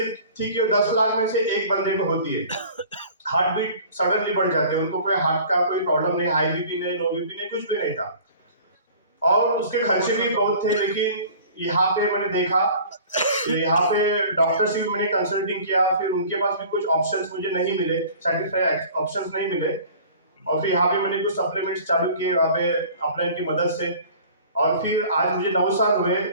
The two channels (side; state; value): both; inverted; correlation -0.46